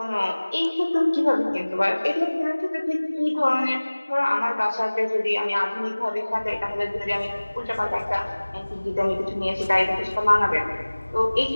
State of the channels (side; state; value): both; inverted; correlation -1.00